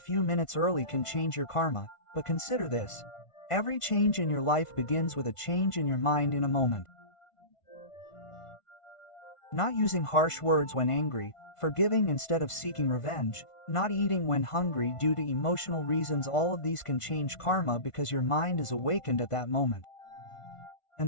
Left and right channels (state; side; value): late; right; 1.5 ms